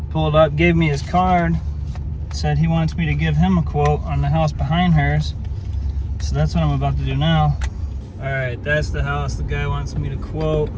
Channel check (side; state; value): both; identical; correlation 1.00